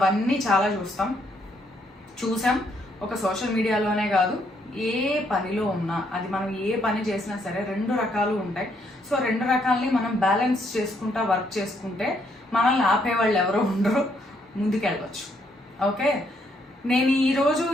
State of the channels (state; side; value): normal; both; correlation 0.72